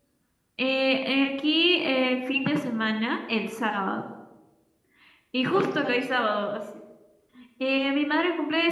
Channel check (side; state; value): both; identical; correlation 1.00